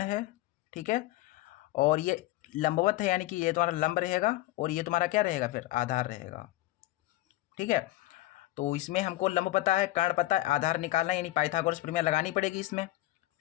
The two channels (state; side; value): quieter; right; 16.9 dB